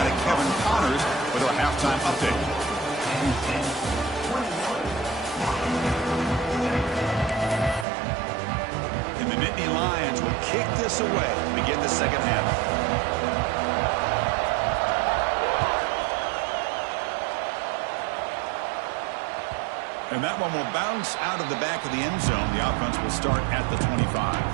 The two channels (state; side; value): drops out; left; at 7.9 s